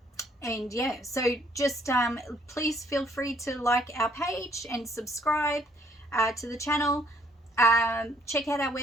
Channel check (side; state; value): both; normal; correlation 0.65